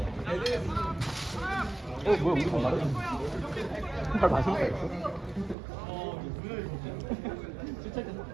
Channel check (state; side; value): drops out; left; at 5.6 s